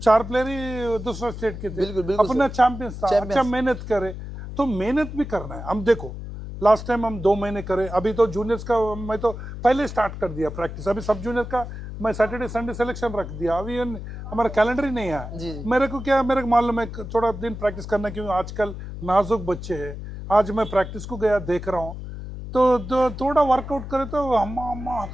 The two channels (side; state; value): left; noise; hum, 9 dB below the sound